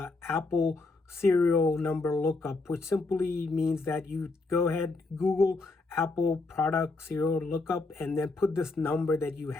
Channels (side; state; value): right; quieter; 3.5 dB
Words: Apple serial number lookup, which simply means that you go ahead, Google Apple product serial lookup, and then put this number that you